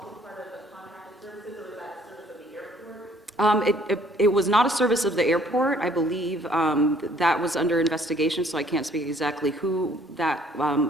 part of the contracted services, or was that service of the airport? It was not a service of the airport. I believe that was under investigation, so I can't speak exactly who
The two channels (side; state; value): both; normal; correlation 0.61